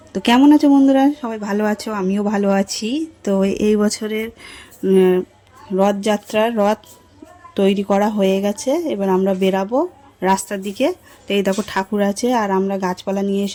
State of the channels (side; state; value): both; identical; correlation 1.00